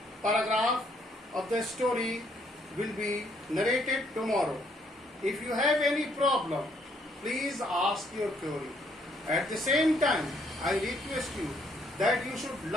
paragraph of the story will be narrated tomorrow. If you have any problem, please ask your query. At the same time, I request you that you should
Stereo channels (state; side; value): normal; both; correlation 0.68